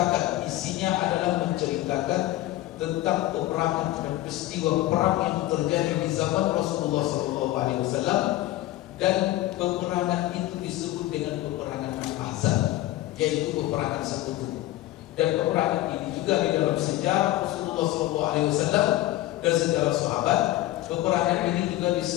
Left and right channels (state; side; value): quieter; right; 16.1 dB